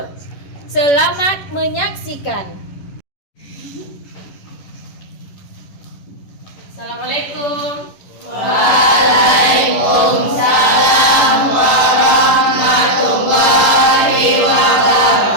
Selamat menyaksikan. Assalamualaikum. Waalaikumsalam warahmatullahi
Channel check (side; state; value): right; late; 11 ms